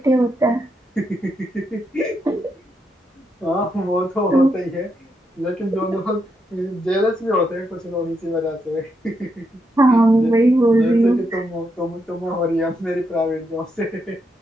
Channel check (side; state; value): both; normal; correlation 0.81